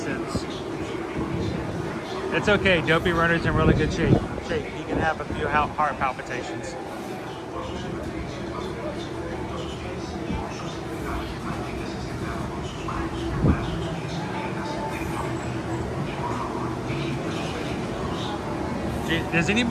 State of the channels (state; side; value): identical; both; correlation 1.00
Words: It's okay, Dopey Runner's in really good shape. He can have a few heart palpitations. Does